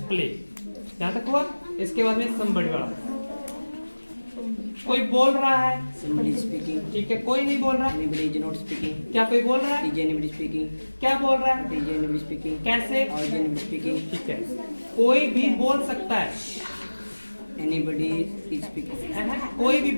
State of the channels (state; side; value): inverted; both; correlation -1.00